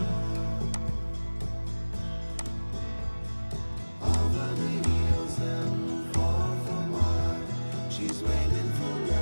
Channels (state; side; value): inverted; both; correlation -1.00